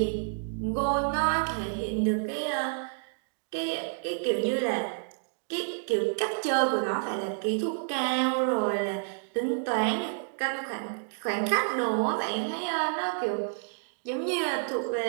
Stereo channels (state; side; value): silent; left; digital silence